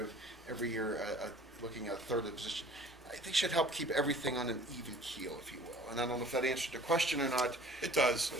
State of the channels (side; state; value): both; normal; correlation 0.50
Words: every year, looking at a third of the position. I think should help keep everything on an even keel, if you will. And I don't know if that answered the question or not. It does,